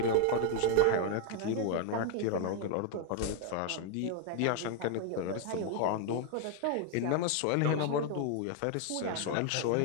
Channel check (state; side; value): different; both; correlation 0.00